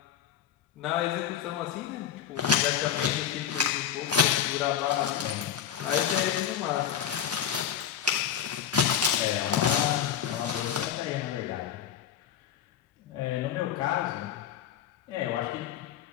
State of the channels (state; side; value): quieter; right; 9.1 dB